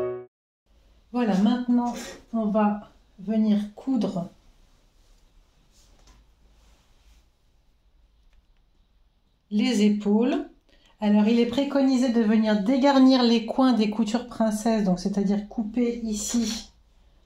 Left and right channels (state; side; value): identical; both; correlation 1.00